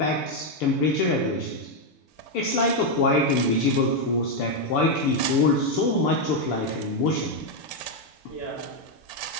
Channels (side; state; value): right; late; 6.9 ms